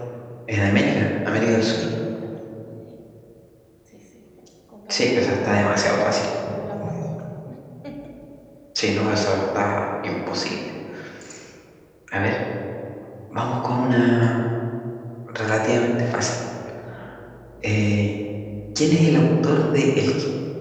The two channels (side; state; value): both; identical; correlation 1.00